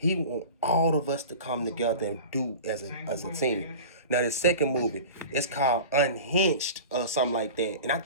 want all of us to come together and do as a team. Now, the second movie, it's called Unhinged or something like that. And I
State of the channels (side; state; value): both; inverted; correlation -0.35